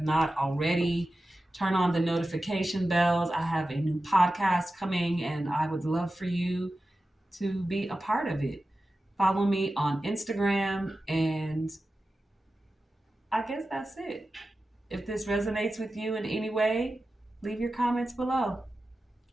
already. Turn on the notification bells. I have a new podcast coming and I would love for you to be a part of it. Follow me on Instagram, and I guess that's it. If this resonates with you in any way, leave your comments below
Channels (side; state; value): both; normal; correlation 0.93